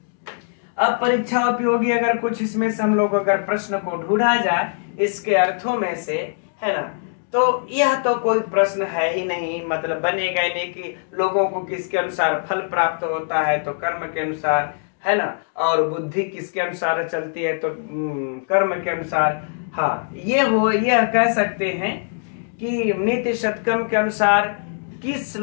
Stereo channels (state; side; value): silent; right; digital silence